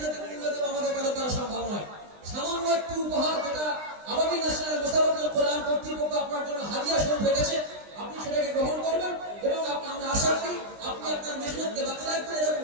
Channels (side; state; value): left; late; 20 ms